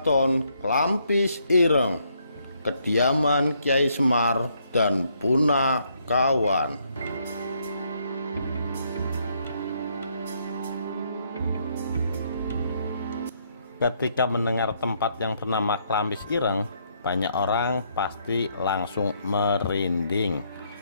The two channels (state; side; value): inverted; both; correlation -0.72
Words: Klampis Ireng, kediaman Kyai Semar dan Punakawan. Ketika mendengar tempat yang bernama Klampis Ireng, banyak orang pasti langsung merinding.